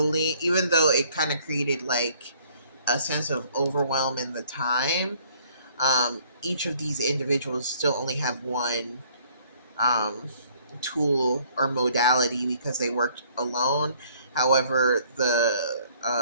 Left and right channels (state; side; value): inverted; both; correlation -0.60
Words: even though it kind of created like a sense of overwhelm in the time, Each of these individuals still only have one um, tool or modality because they worked alone. However, the